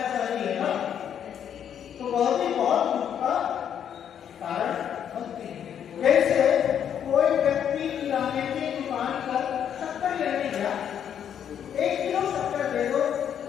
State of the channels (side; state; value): right; quieter; 9.0 dB